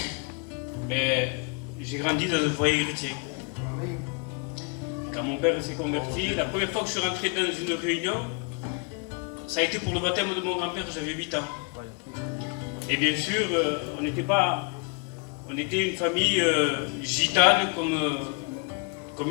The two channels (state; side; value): quieter; right; 35.1 dB